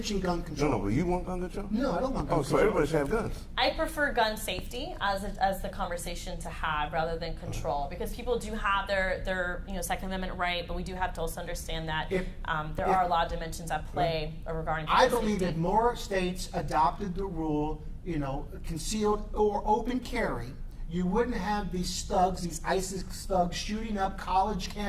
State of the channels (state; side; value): identical; both; correlation 1.00